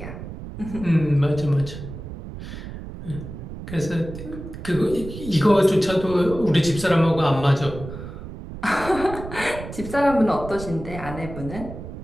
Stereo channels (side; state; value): right; noise; rumble, 11 dB below the sound